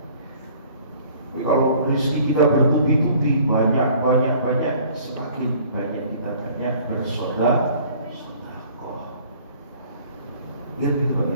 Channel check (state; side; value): inverted; both; correlation -0.54